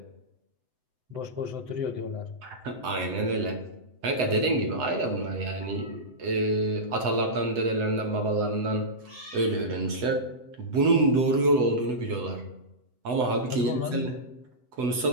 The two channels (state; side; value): late; left; 7.9 ms